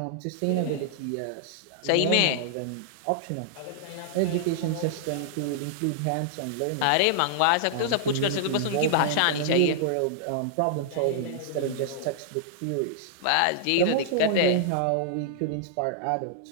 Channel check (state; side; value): different; both; correlation -0.01